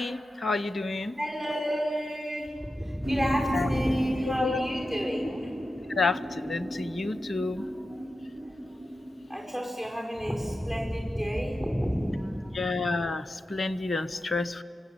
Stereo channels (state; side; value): normal; both; correlation 0.92